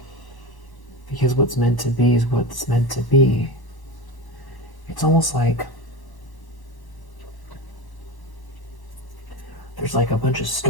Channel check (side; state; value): right; late; 1.0 ms